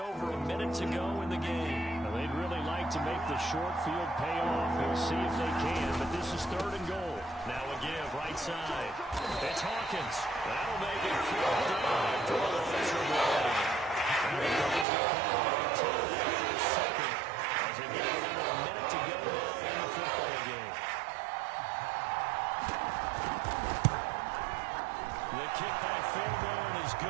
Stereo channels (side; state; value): left; drops out; at 14.9 s